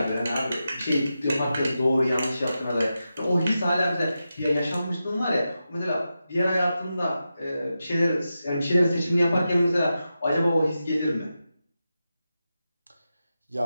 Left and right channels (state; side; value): inverted; both; correlation -0.90